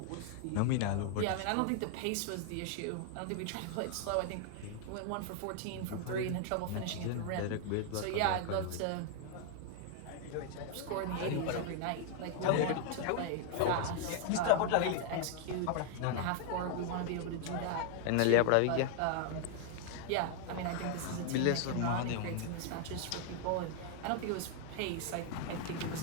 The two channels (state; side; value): different; both; correlation 0.00